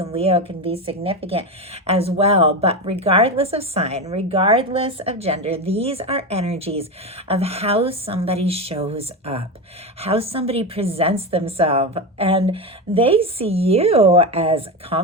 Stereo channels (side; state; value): both; normal; correlation 0.17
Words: Leo can be significant as well. But regardless of sign, regardless of gender, these are energies of how somebody shows up, how somebody presents themselves. And they see you as